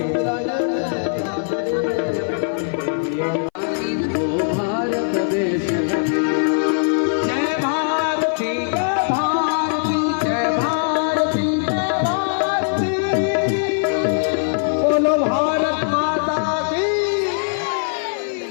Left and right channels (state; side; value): silent; right; 59 dB below the other